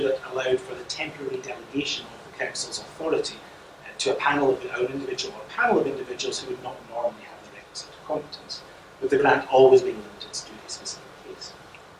that allowed for the temporary delegation of the Council's authority to a panel of an individual or a panel of individuals who would not normally have the requisite competence, with the grant always being limited to a specific case.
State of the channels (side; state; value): both; identical; correlation 1.00